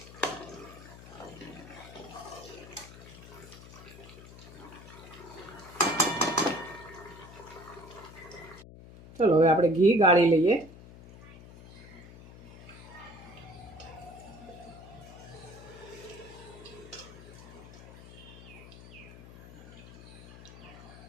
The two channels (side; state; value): left; noise; hum, 17 dB below the sound